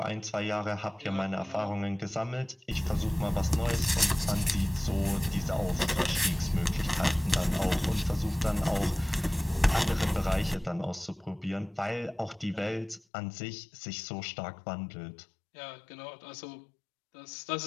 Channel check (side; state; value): right; drops out; at 13.0 s